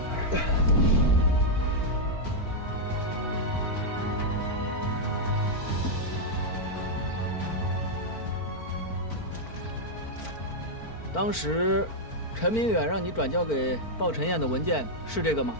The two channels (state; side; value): late; right; 4.4 ms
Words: 当时，陈明远让你转交给鲍晨燕的文件是这个吗？